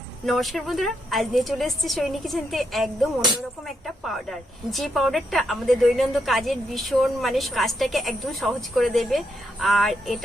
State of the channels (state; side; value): normal; both; correlation 0.79